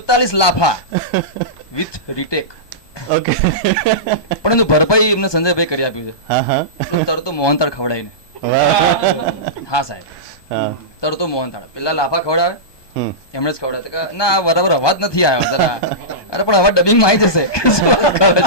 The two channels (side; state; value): right; late; 1.2 ms